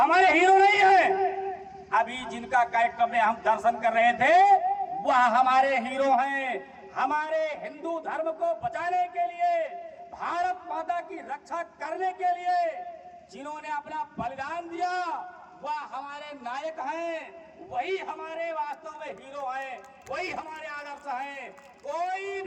हीरो नहीं है। अभी जिनका कार्यक्रम में हम दर्शन कर रहे थे वह हमारे हीरो हैं। हमारे हिंदू धर्म को बचाने के लिए, भारत माता की रक्षा करने के लिए जिन्होंने अपना बलिदान दिया वह हमारे नायक हैं। वही हमारे वास्तव में हीरो हैं, वही हमारे आदर्श हैं। कोई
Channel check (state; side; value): identical; both; correlation 1.00